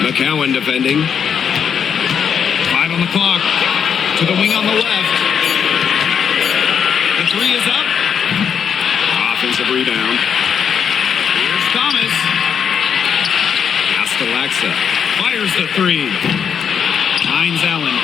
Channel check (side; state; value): right; quieter; 7.5 dB